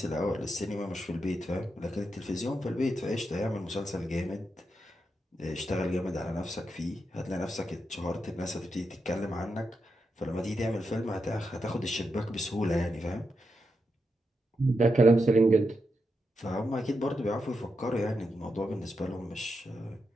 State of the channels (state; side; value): normal; both; correlation 0.85